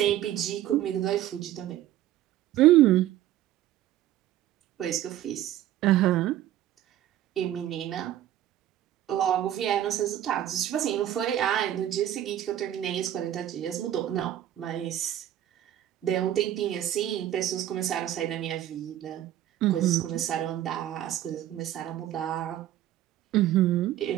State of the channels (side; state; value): left; quieter; 12.5 dB